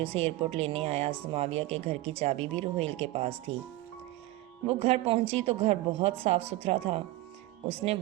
اسے ایئرپورٹ لینے آیا۔ سماویہ کے گھر کی چابی بھی روہیل کے پاس تھی۔ وہ گھر پہنچی تو گھر بہت صاف ستھرا تھا۔ اس نے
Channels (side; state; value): left; quieter; 17.6 dB